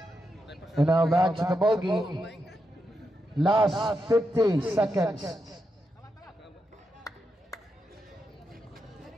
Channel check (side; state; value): both; normal; correlation 0.85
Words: And now back to the ball game. Last 50 seconds.